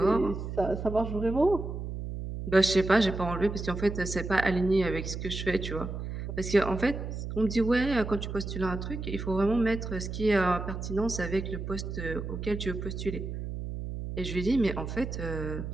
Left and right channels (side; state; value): right; noise; hum, 6 dB below the sound